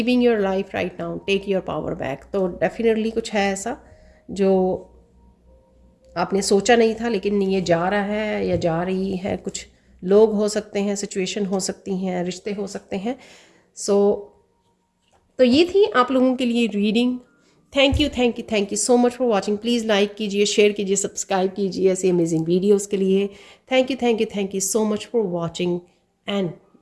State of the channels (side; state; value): both; identical; correlation 1.00